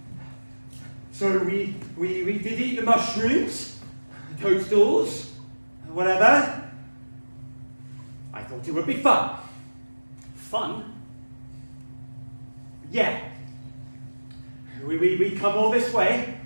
So we did eat the mushrooms, the toadstools, whatever. I thought it would be fun. Fun? Yeah. We come all this way,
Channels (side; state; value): both; inverted; correlation -1.00